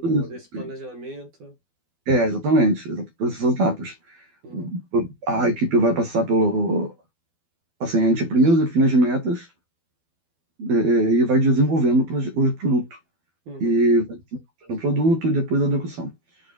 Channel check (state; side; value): late; left; 12 ms